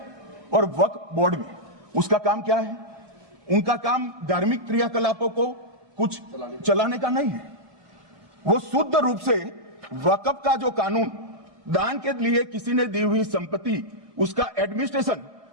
और वक्फ बोर्ड में। उसका काम क्या है? उनका काम धार्मिक क्रियाकलापों को कुछ चलाने का नहीं है। वो शुद्ध रूप से वक्फ का जो कानून, दान के लिए किसी ने दी हुई संपत्ति, उसका एडमिनिस्ट्रेशन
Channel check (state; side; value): late; left; 1.7 ms